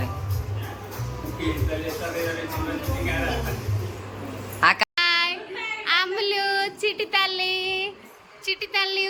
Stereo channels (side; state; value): both; identical; correlation 1.00